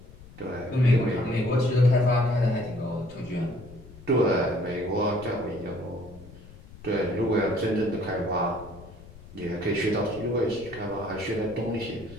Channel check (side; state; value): left; noise; rumble, 19 dB below the sound